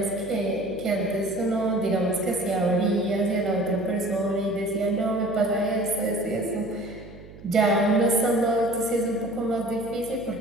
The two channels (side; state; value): right; noise; hum, 18 dB below the sound